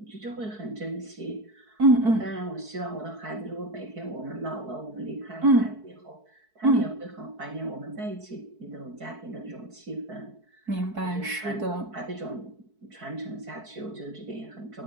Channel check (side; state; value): left; late; 4.6 ms